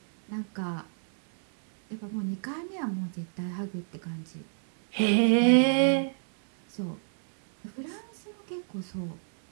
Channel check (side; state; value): left; silent; digital silence